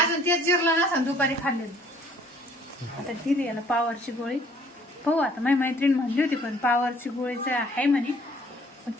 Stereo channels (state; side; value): normal; both; correlation 0.58